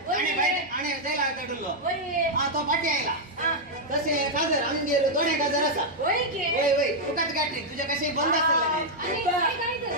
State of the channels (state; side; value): noise; right; hum, 25 dB below the sound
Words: भायर आणे जायला काडुल्लो हा तो फाटी आयला तसे काजर आमगेर दोडे काजर आसा वय तुकाच कॅटरिंग तुझे कशे बंद